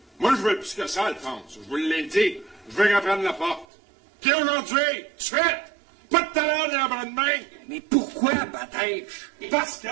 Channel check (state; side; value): drops out; left; at 3.7 s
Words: Moi, je veux plus que ça, Alphonse. Je vous l'ai dit. Je veux qu'elle prenne la porte. Puis aujourd'hui, tout de suite, pas de talent ni en bras de main. Mais pourquoi, Batèche? Parce que